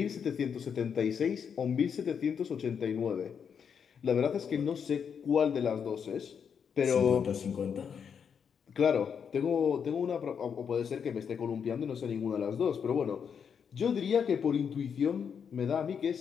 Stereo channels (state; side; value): quieter; right; 7.1 dB